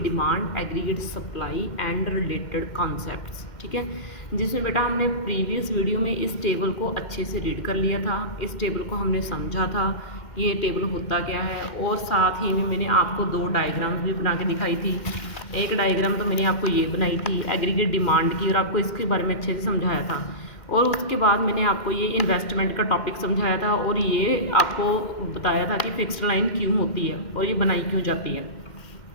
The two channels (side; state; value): right; late; 2.1 ms